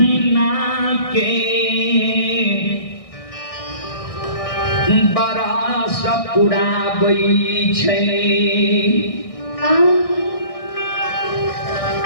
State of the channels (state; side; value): late; right; 1.6 ms